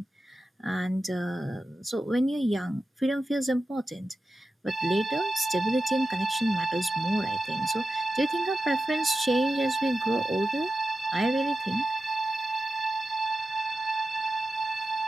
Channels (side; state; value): both; normal; correlation 0.92